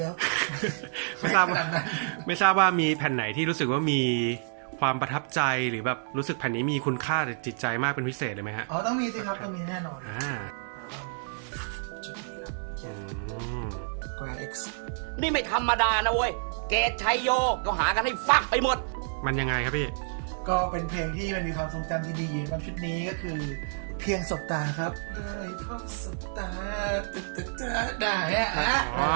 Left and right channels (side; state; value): left; silent; digital silence